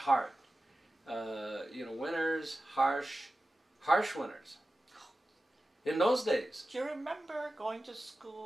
Winters, harsh winters. In those days. Do you remember going to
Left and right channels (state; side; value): normal; both; correlation 0.94